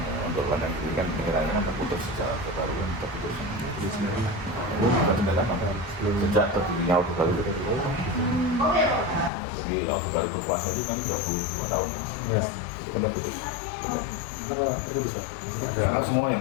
untuk ladang ini kan penilaiannya kan terputus secara terbaru kan terputus. Sejak terdirinya Orde Baru. Jadi Orde Baru berkuasa itu kan 32 tahun. Yes. Itu kan terputus. Kenapa terputus Pak? Maksudnya ada Karena semua yang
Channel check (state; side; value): drops out; right; at 9.3 s